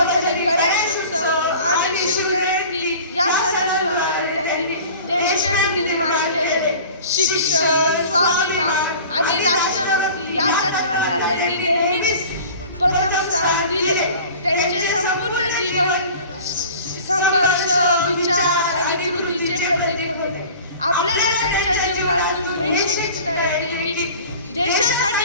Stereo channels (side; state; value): both; inverted; correlation -0.42